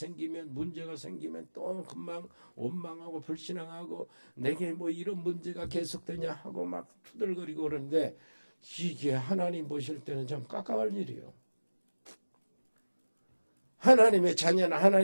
문제가 생기면 또 금방 원망하고 불신앙하고 내게 뭐 이런 문제가 계속되냐 하고 막 투덜거리고 그러는데 이게 하나님 보실 때는 좀 깜깜할 일이에요. 하나님의 자녀는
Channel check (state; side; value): inverted; both; correlation -1.00